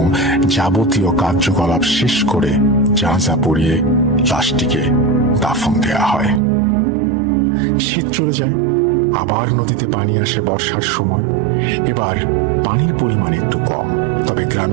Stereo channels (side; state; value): left; drops out; at 6.4 s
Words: যাবতীয় কার্যকলাপ শেষ করে জানাজা পড়িয়ে লাশটিকে দাফন দেয়া হয়। শীত চলে যায়, আবার নদীতে পানি আসে বর্ষার সময়। এবার পানির পরিমাণ একটু কম, তবে